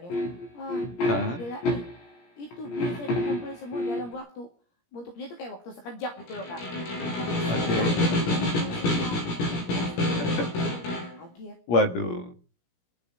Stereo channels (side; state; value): right; late; 17 ms